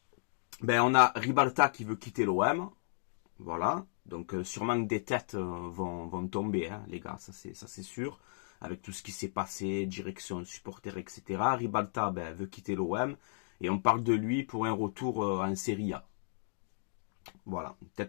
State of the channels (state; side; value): silent; right; digital silence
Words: on a Ribalta qui veut quitter l'OM. Voilà, donc sûrement que des têtes vont tomber, hein, les gars, ça c'est sûr. Avec tout ce qui s'est passé, direction, supporters, etc. Ribalta veut quitter l'OM et on parle de lui pour un retour en Serie A. Voilà,